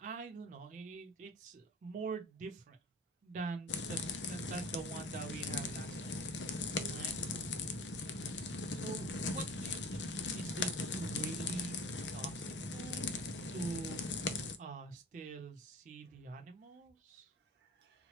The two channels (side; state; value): both; normal; correlation 0.41